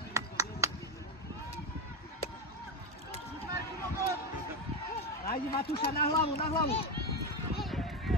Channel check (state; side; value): normal; both; correlation 0.13